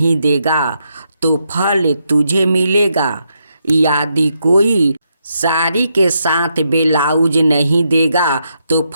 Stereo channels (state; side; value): inverted; both; correlation -0.80